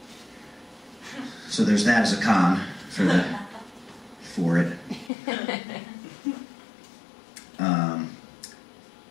So there's that as a con for it.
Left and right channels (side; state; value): right; drops out; at 5.1 s